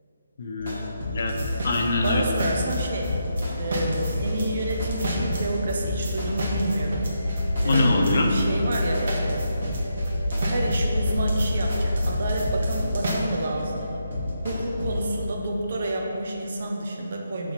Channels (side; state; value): both; inverted; correlation -0.81